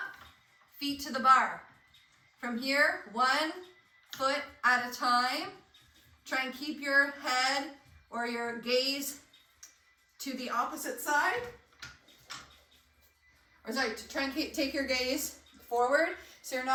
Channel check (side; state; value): both; identical; correlation 1.00